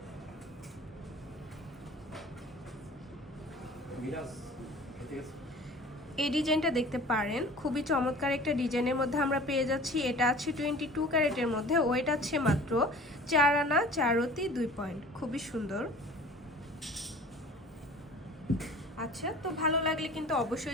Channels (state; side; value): normal; both; correlation 0.44